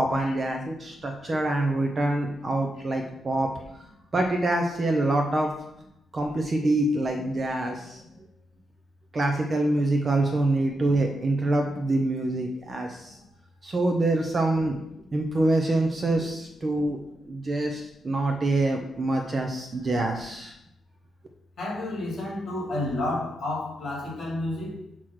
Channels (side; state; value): both; normal; correlation 0.86